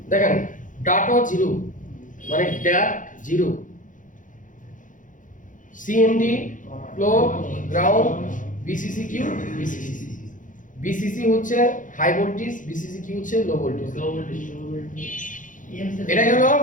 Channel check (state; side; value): late; right; 0.38 ms